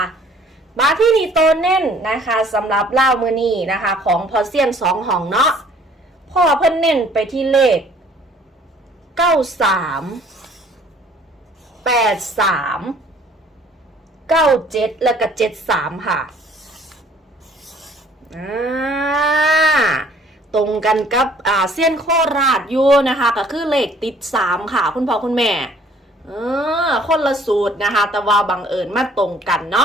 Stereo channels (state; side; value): normal; both; correlation 0.57